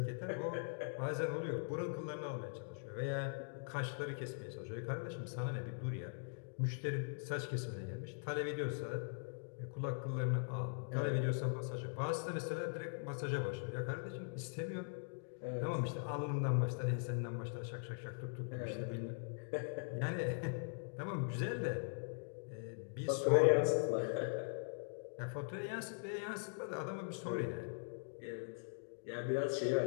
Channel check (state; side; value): silent; right; digital silence